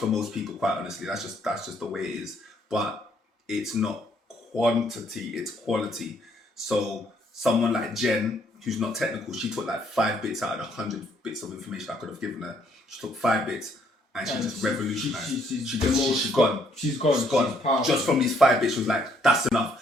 most people, quite honestly. That's just the way it is. But it's not quantity, it's quality. So someone like Jen, who's not technical, she took like 5 bits out of the 100 bits of information I could have given her. She took 5 bits and she just revolutionized. She's gone. She's gone. Just from these 5 bits, she was like, that's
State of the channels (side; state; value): both; normal; correlation 0.68